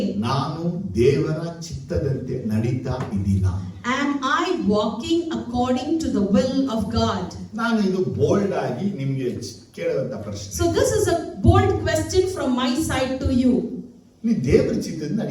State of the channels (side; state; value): both; identical; correlation 1.00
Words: ನಾನು ದೇವರ ಚಿತ್ತದಂತೆ ನಡೀತಾ ಇದ್ದೀನಾ? Am I walking according to the will of God? ನಾನು ಇದು ಬೋಲ್ಡ್ ಆಗಿ ನಿಮ್ಗೆ ಕೇಳುವಂತ ಪ್ರಶ್ನೆ. So this is a bold question from my side to you. ನೀ ದೇವರ ಚಿತ್ತದಿಂದ